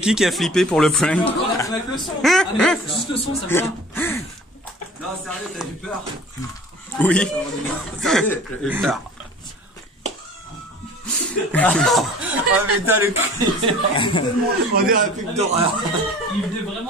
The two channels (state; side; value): normal; both; correlation 0.44